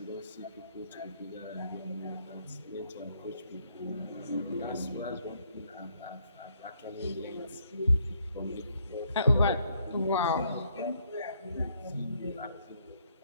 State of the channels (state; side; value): inverted; both; correlation -0.70